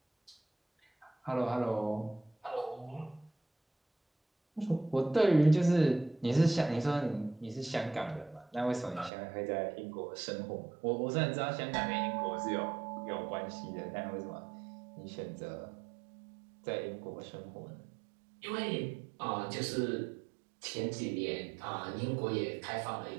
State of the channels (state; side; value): drops out; left; at 9.1 s